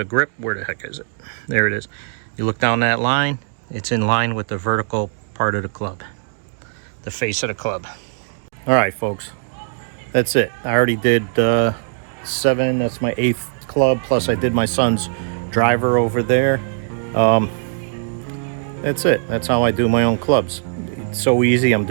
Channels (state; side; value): silent; left; digital silence